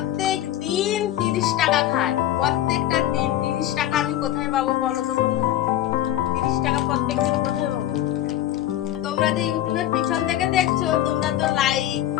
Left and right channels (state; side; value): quieter; right; 12.8 dB